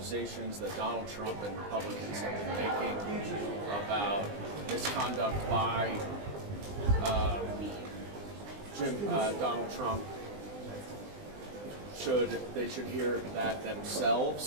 that Donald Trump and Republicans have been making about misconduct by Donald Trump, they should hear that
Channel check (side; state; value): left; late; 20 ms